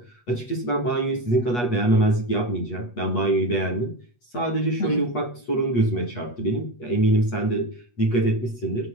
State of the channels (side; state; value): right; late; 8.3 ms